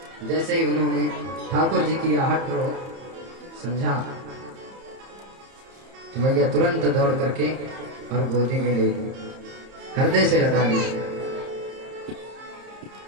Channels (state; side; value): late; left; 30 ms